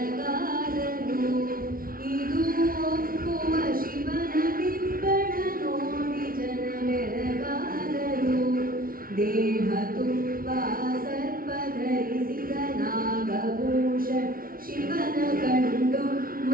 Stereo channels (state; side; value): late; left; 0.42 ms